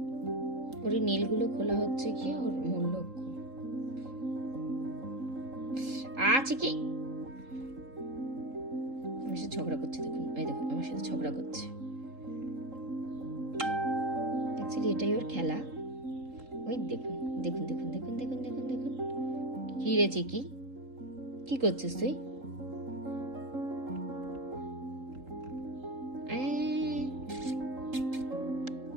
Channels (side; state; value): left; late; 3.8 ms